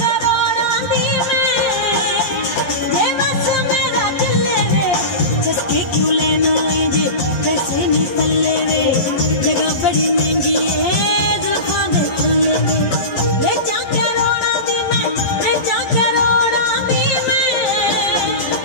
दी मैं ये बस मेरा चले वे चस्के क्यों लेना है जे पैसे नहीं पल्ले वे जगह बड़ी महंगी है जुल्फां दे थल्ले वे बेचा करोड़ां दी मैं बेचा करोड़ां दी मैं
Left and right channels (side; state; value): right; late; 11 ms